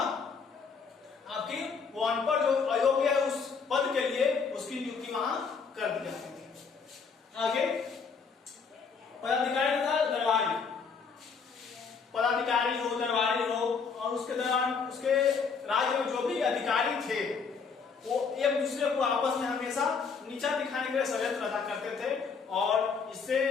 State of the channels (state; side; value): quieter; right; 5.6 dB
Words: आपकी वो अनपढ़ जो अयोग्य है उस पद के लिए उसकी नियुक्ति वहां कर दी जाती थी। आगे पदाधिकारी था दरबारी, पदाधिकारी हो दरबारी हो, और उसके दौरान उसके राज्य में जो भी अधिकारी थे वो एक दूसरे को आपस में हमेशा नीचा दिखाने के लिए षड्यंत्र रचा करते थे और इससे